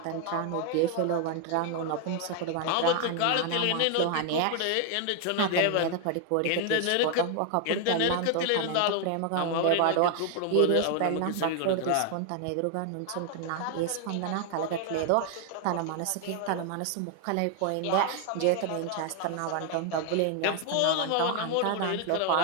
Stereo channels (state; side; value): different; both; correlation 0.00